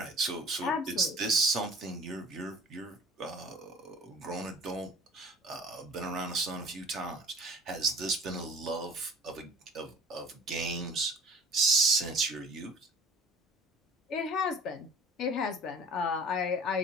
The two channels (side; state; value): both; normal; correlation 0.46